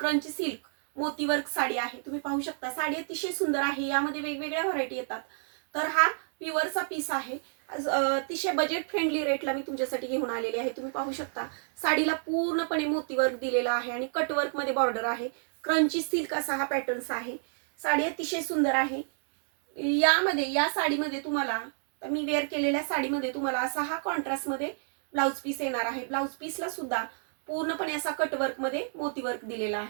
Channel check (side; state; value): left; silent; digital silence